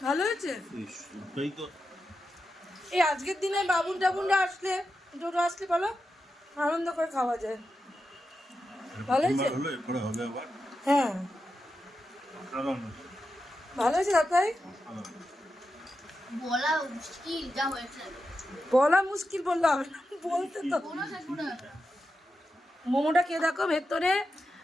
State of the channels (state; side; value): normal; both; correlation 0.89